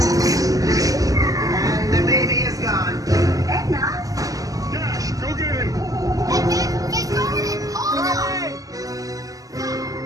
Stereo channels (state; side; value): late; left; 0.17 ms